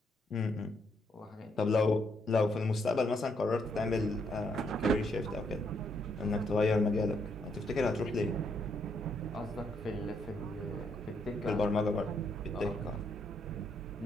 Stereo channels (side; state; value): both; normal; correlation 0.74